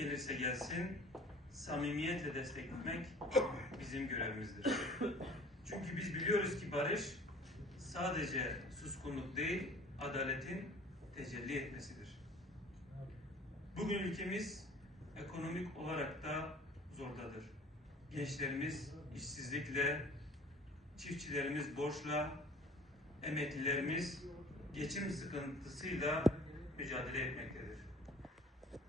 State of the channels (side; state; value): both; normal; correlation 0.47